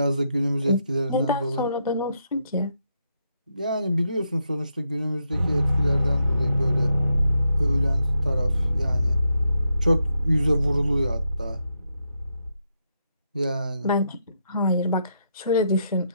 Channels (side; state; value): both; inverted; correlation -0.81